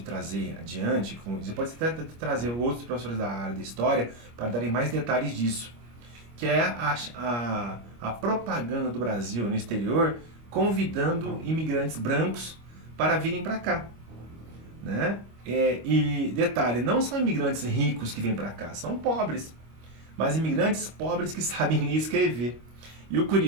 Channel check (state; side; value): late; left; 25 ms